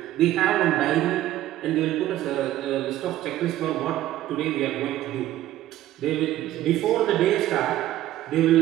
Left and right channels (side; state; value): left; quieter; 14.1 dB